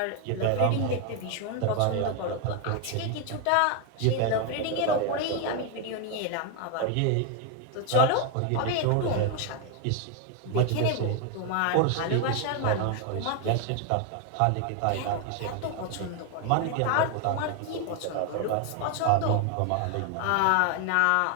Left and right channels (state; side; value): different; both; correlation 0.01